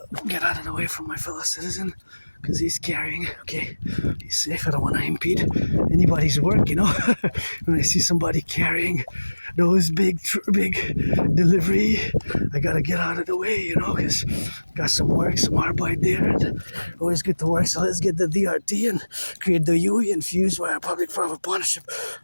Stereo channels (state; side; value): inverted; both; correlation -1.00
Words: get out of the way from my fellow citizen, because he's carrying, okay, he's safe. I don't want to impede anybody's work, When I see somebody carrying those big delivery, I gotta get out of the way, because got some arbeit there, and always get to work. So let's get the DRT and create the UE and fuse via public-private partnership